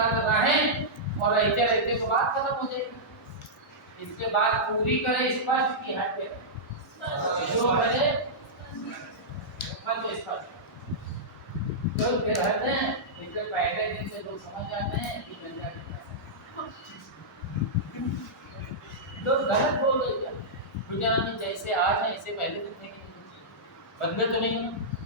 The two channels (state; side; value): normal; both; correlation -0.12